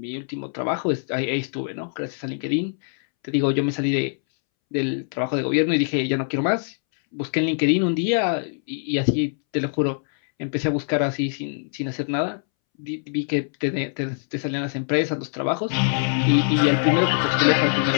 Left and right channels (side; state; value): right; silent; 63 dB below the other